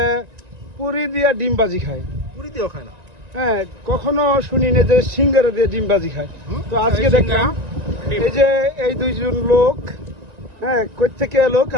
পুরি দিয়া ডিমবাজি খায়, পুরি দিয়েও খায় না। হ্যাঁ, কখনো শুনি না যে সিঙ্গারা দিয়ে ডিমবাজি খায়। তো আজকে দেখলাম এই যে এই দুইজন লোক, হ্যাঁ, কই থেকে এলো,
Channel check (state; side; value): late; left; 1.9 ms